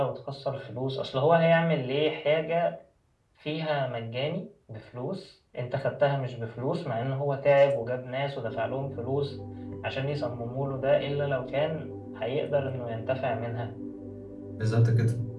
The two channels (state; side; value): identical; both; correlation 1.00